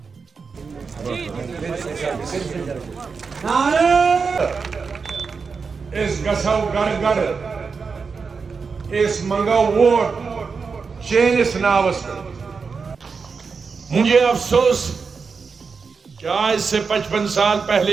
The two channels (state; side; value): quieter; left; 5.1 dB